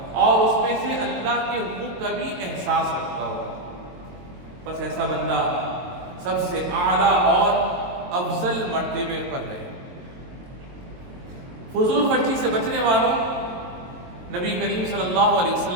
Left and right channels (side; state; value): left; late; 22 ms